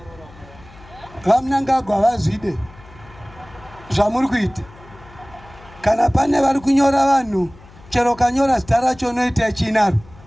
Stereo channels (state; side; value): noise; left; hum, 23 dB below the sound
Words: vaMnangagwa vazvide zvamuri kuita. Kana pane vari kunyora vanhu chero kanyora zita racho unoita chinaro